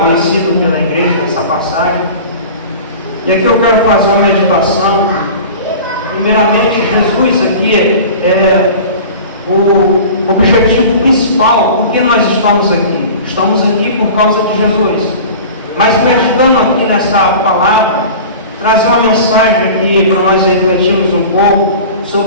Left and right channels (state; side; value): inverted; both; correlation -0.38